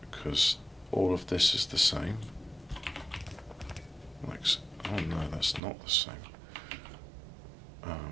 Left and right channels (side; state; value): left; drops out; at 5.6 s